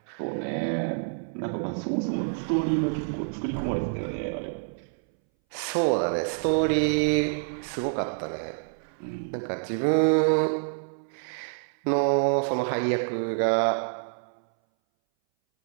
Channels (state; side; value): silent; left; 60 dB below the other